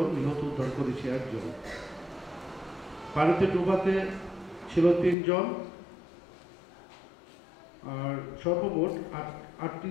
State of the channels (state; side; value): drops out; right; at 5.2 s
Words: নিহত উদ্ধার করেছি 1 জন। পানিতে ডুবাতে ছিল 3 জন, আর সর্বমোট